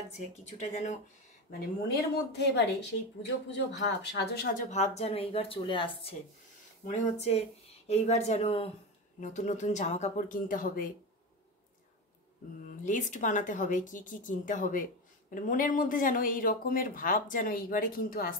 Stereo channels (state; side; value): normal; both; correlation 0.19